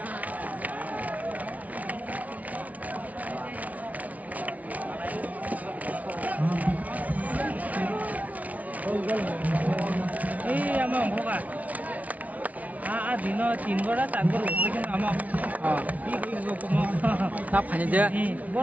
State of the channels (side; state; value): left; late; 0.070 ms